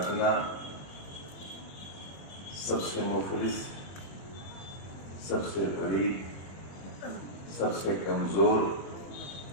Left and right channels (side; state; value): right; late; 21 ms